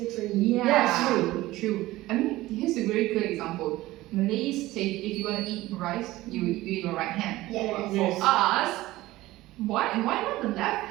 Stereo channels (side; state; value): left; quieter; 17.5 dB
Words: Yeah, True. I mean, here's a very good example. Malays say if you want to eat rice, you eat your right hand. Yeah. But Yes. for us, why not the left